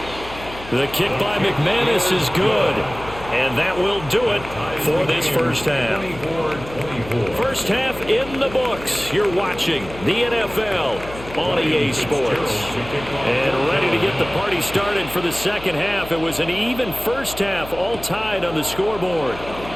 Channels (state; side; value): noise; left; hum, 15 dB below the sound